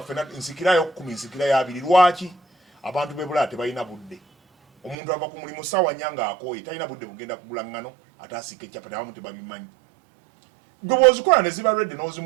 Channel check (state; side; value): drops out; left; at 5.0 s